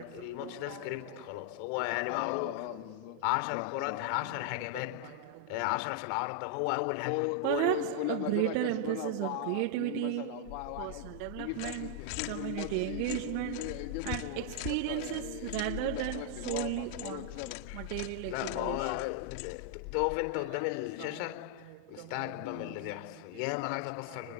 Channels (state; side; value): different; both; correlation 0.00